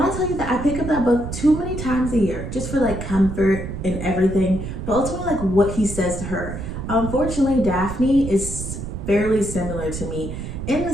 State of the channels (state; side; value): noise; right; rumble, 7 dB below the sound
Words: I tell you that I pick up that book too many times a year just for like comfort and everything, but ultimately like what he says to her. Unfortunately, Daphne is fairly similar to me in the